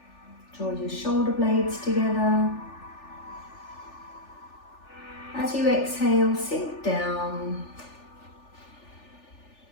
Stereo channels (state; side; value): late; right; 3.4 ms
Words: Draw your shoulder blades together. As you exhale, sink down.